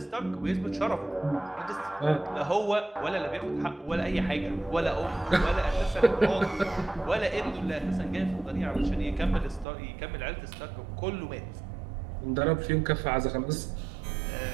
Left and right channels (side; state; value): left; drops out; at 9.7 s